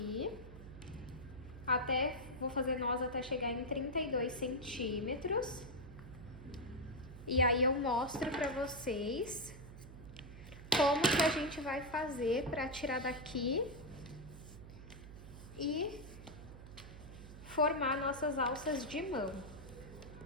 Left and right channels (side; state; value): right; noise; hum, 14 dB below the sound